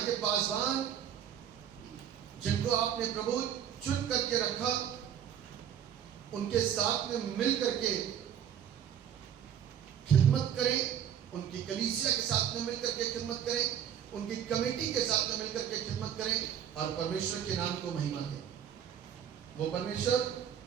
के पासवान जिनको आपने प्रभु चुन करके रखा, उनके साथ में मिल करके खिदमत करें, उनकी कलीसिया के साथ में मिल करके खिदमत करें, उनकी कमेटी के साथ में मिलकर के खिदमत करें और परमेश्वर के नाम को महिमा दें। वो परमेश्वर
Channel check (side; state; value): left; quieter; 9.3 dB